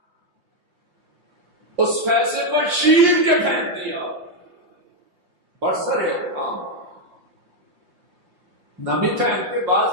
اس فیصلے پر چیر کے پھینک دیا، برسر عام، نمی پھینک کے بعد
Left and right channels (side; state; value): left; late; 5.7 ms